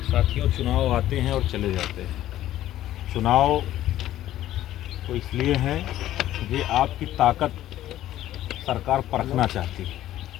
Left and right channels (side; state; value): right; quieter; 13.4 dB